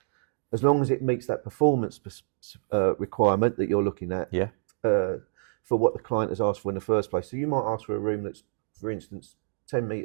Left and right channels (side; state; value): left; silent; digital silence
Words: As long as it meets that performance requirement that you're looking at. Yeah. For what the client has asked for in the first place. So you might ask for a room that's, for instance, 10